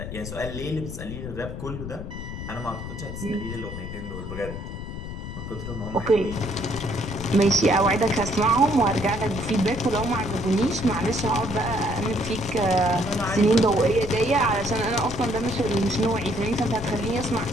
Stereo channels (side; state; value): left; noise; rumble, 8 dB below the sound